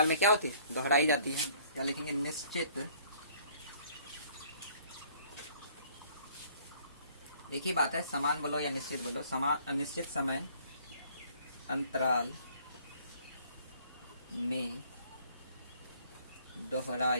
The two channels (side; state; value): both; inverted; correlation -0.58